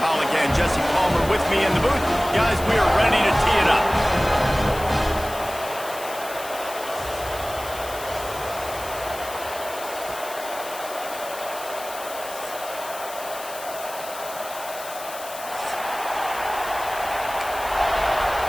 and Jesse Palmer with me in the booth. Guys, we are ready to tee it up.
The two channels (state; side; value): noise; left; hiss, 13 dB below the sound